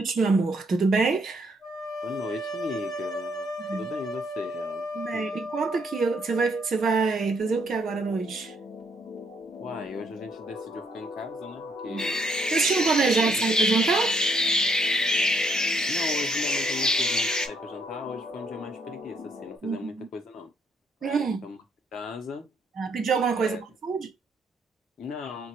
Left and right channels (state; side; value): normal; both; correlation 0.70